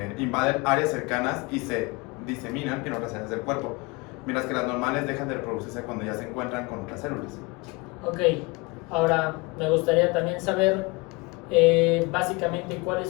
invaden áreas cercanas y se diseminan en otras áreas del cuerpo, mientras que las normales dejan de reproducirse cuando ya se encuentran con otras células. Ok, ahora me gustaría también saber básicamente cuáles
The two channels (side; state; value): right; quieter; 26.2 dB